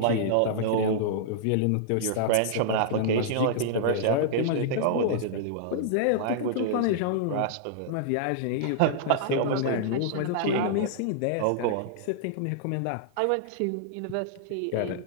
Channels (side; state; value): both; different; correlation -0.01